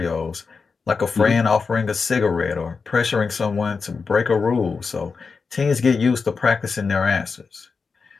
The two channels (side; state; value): right; quieter; 4.9 dB